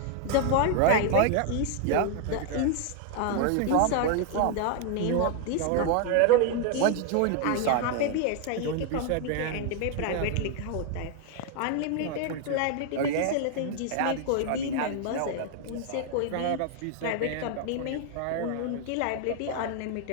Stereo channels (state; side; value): different; both; correlation 0.00